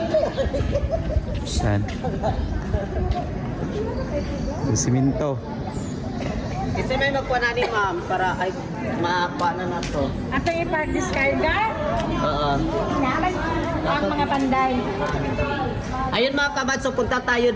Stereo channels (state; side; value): identical; both; correlation 1.00